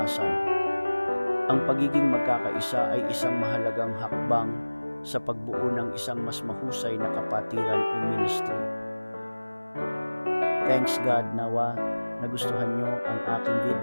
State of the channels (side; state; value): both; inverted; correlation -1.00